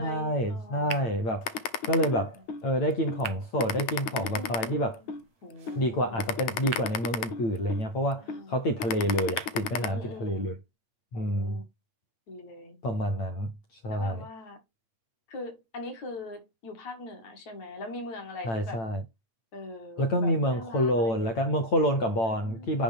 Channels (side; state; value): right; late; 9.5 ms